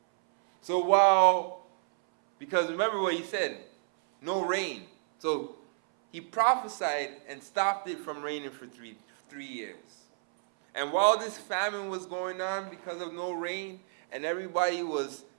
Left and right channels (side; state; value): left; silent; 58 dB below the other